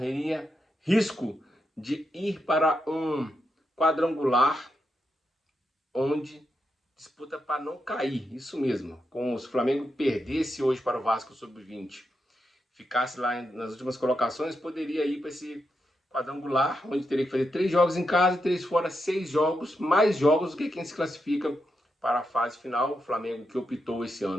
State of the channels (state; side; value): normal; both; correlation 0.85